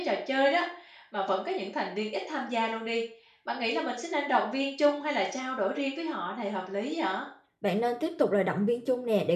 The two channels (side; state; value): both; identical; correlation 1.00